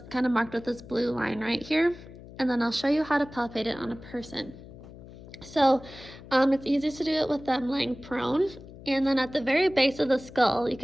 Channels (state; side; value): noise; left; hum, 17 dB below the sound